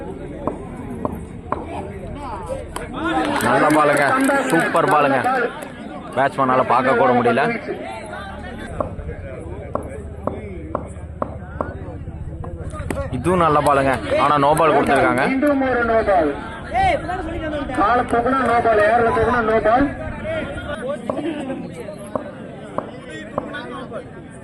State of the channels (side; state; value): both; identical; correlation 1.00